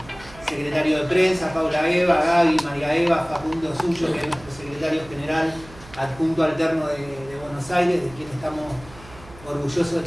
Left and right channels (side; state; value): right; noise; hum, 20 dB below the sound